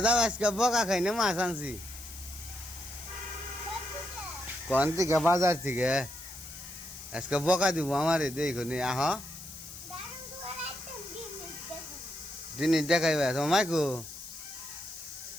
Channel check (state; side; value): noise; left; hiss, 14 dB below the sound